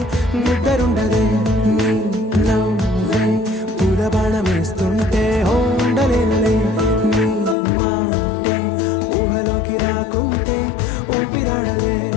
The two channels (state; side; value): drops out; right; at 7.6 s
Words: నిద్రుండదే నీ నవ్వే పూల బాణం వేస్తుంటే ఉండలేనులే నీ మాటే ఊహలోకి రాకుంటే ఊపిరాడదే